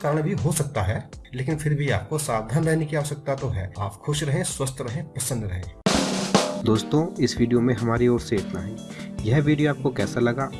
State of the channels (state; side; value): identical; both; correlation 1.00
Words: भी हो सकता है, लेकिन फिर भी आपको सावधान रहने की आवश्यकता तो है। आप खुश रहें, स्वस्थ रहें, प्रसन्न रहें। दोस्तों, इस वीडियो में हमारी ओर से इतना ही। यह वीडियो आपको कैसा लगा,